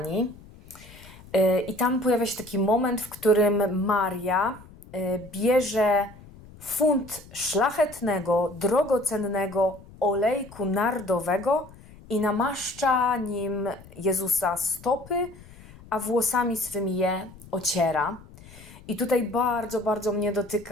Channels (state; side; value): noise; left; rumble, 21 dB below the sound